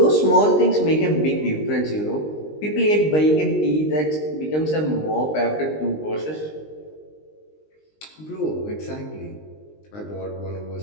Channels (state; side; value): late; right; 19 ms